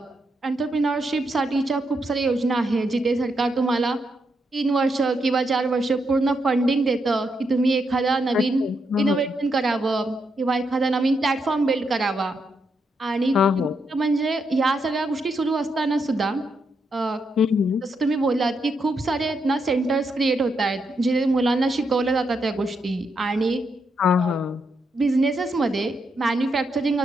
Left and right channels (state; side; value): normal; both; correlation 0.81